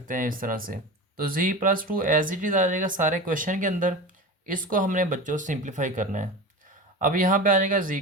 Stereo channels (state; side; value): normal; both; correlation 0.29